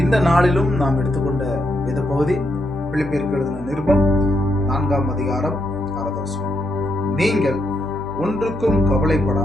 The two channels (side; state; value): both; normal; correlation 0.80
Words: இந்த நாளிலும் நாம் எடுத்துக்கொண்ட வேத பகுதி பிலிப்பியருக்கு எழுதின நிருபம் 4ஆம் அதிகாரம் 6ஆவது வசனம். நீங்கள் ஒன்றுக்கும்